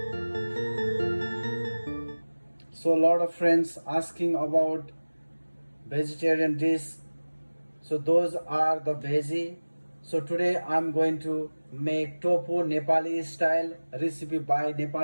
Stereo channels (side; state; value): both; inverted; correlation -1.00